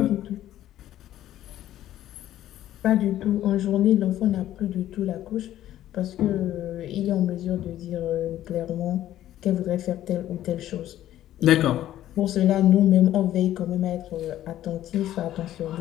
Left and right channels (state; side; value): quieter; right; 12.9 dB